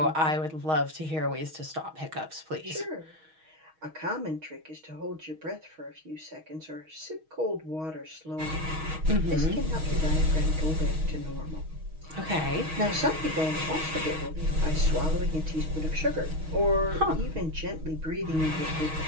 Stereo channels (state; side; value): late; left; 6.3 ms